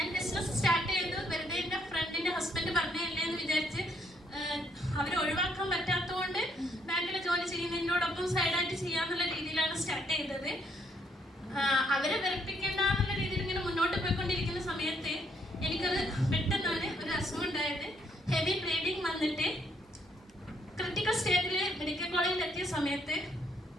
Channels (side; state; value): both; normal; correlation 0.71